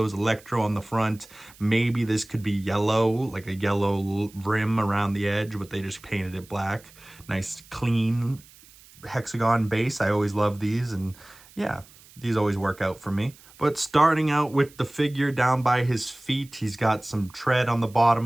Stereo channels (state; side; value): noise; right; hiss, 24 dB below the sound